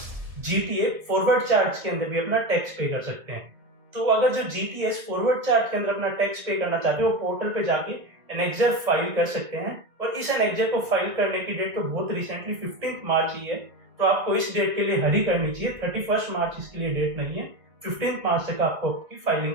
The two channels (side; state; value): left; late; 1.8 ms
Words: जीटीए फॉरवर्ड चार्ज के अंदर भी अपना टैक्स पे कर सकते हैं। तो अगर जो जीटीएस फॉरवर्ड चार्ज के अंदर अपना टैक्स पे करना चाहते हैं वो पोर्टल पे जाके एनेक्जर फाइल कर सकते हैं और इस एनेक्जर को फाइल करने की डेट तो बहुत रिसेंटली 15 मार्च ही है, तो आपको इस डेट के लिए हरी करनी चाहिए। 31 मार्च इसके लिए डेट नहीं है, 15 मार्च तक आपको आपकी